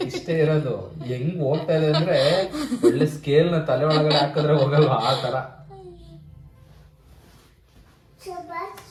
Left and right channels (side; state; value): both; identical; correlation 1.00